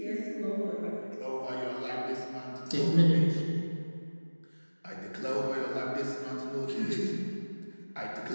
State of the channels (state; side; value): inverted; both; correlation -1.00